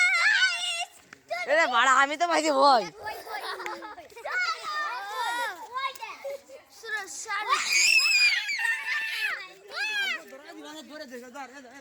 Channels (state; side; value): identical; both; correlation 1.00